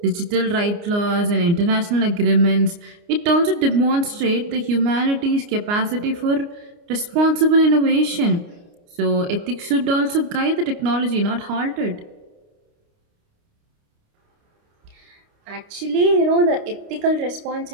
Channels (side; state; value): left; late; 29 ms